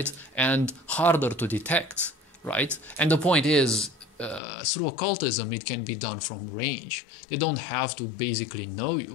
And harder to detect, right? And the point is, through occultism, it can be done from range. They don't have to basically know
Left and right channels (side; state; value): right; drops out; at 4.4 s